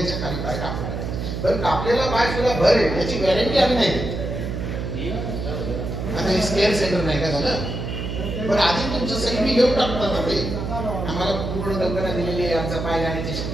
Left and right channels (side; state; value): right; noise; hum, 4 dB below the sound